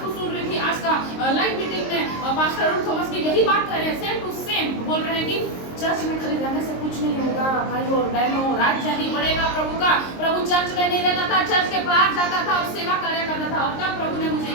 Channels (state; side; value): late; right; 23 ms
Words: सुन रही थी, आज का लाइव मीटिंग में पास्टर अरुण थॉमस की यही बात कर रहे हैं, सेम टू सेम बोल रहे हैं कि चर्च में खाली रहने से कुछ नहीं होगा भाइयों और बहनों, राज्य ही बढ़ेगा प्रभु का। प्रभु चर्च में नहीं रहता था, चर्च के बाहर जाता था और सेवा कार्य करता था। और तब प्रभु ने मुझे